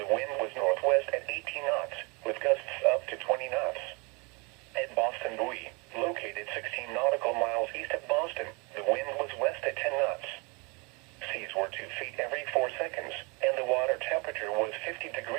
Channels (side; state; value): left; quieter; 30.2 dB